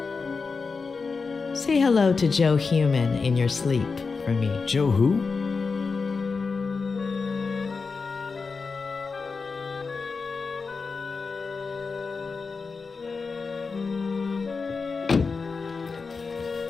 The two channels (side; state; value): right; quieter; 4.7 dB